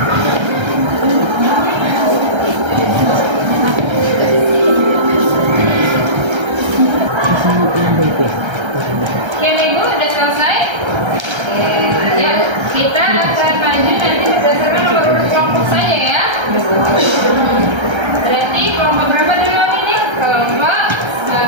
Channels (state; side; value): late; left; 1.3 ms